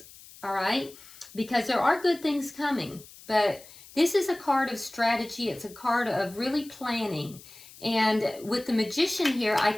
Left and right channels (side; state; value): left; noise; hiss, 20 dB below the sound